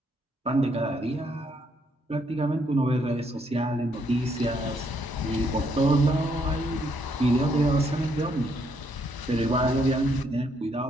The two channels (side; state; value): both; normal; correlation 0.72